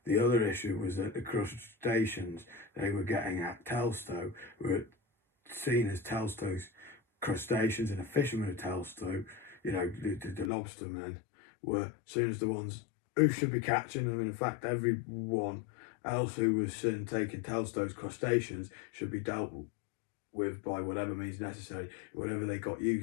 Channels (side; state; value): right; drops out; at 10.5 s